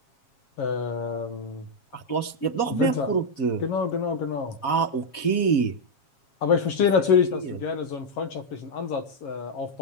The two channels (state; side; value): late; right; 7.3 ms